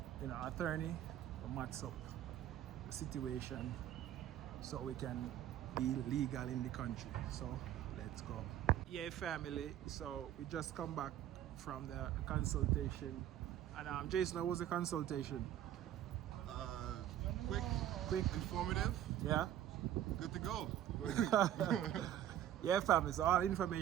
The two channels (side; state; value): left; quieter; 11.5 dB